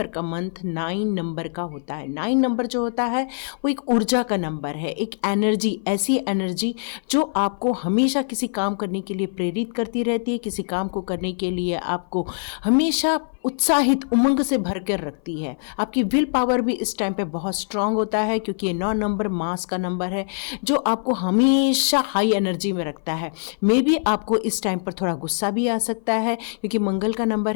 का मंथ 9 नंबर का होता है। 9 नंबर जो होता है वो एक ऊर्जा का नंबर है, एक एनर्जी, ऐसी एनर्जी जो आपको हमेशा किसी काम करने के लिए प्रेरित करती रहती है, किसी काम को करने के लिए आपको हमेशा उत्साहित, उमंग से भर कर रखती है। आपकी विल पावर भी इस टाइम पे बहुत स्ट्रांग होता है क्योंकि ये 9 नंबर मास का नंबर है जो आपको हमेशा हाई एनर्जी में रखता है। मे बी आपको इस टाइम पर थोड़ा गुस्सा भी आ सकता है क्योंकि मंगल का नंबर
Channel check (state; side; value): silent; right; 58 dB below the other